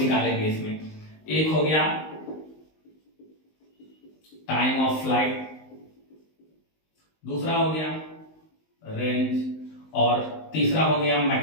इसमें। एक हो गया टाइम ऑफ फ्लाइट, दूसरा हो गया रेंज, और तीसरा हो गया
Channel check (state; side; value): late; right; 19 ms